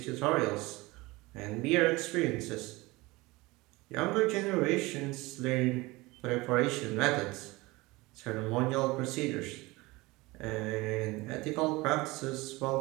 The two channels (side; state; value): left; quieter; 22.0 dB